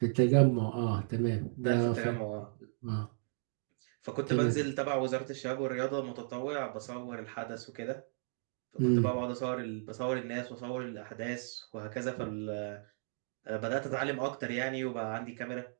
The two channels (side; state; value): left; silent; digital silence